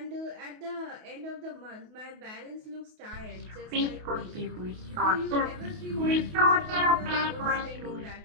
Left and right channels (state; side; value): late; left; 28 ms